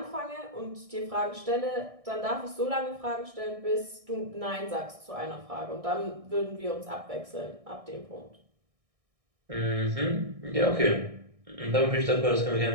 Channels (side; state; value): left; late; 1.6 ms